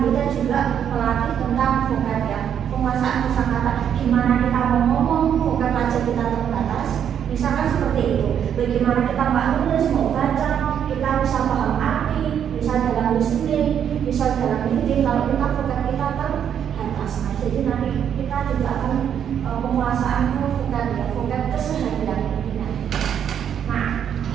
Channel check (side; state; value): left; quieter; 8.8 dB